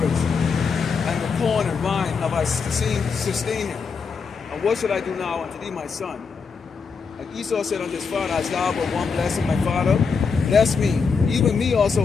and the corn and wine have I sustained him. And what should I do now unto thee, my son? And Esau said unto his father, hast thou but one blessing, my father? Bless me, even me also,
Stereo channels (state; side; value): quieter; right; 5.4 dB